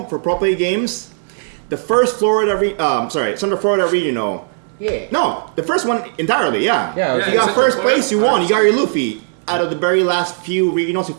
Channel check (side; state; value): left; silent; 67 dB below the other